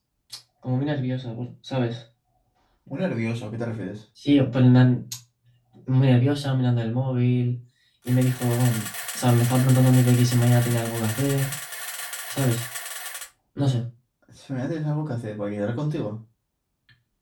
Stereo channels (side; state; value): both; identical; correlation 1.00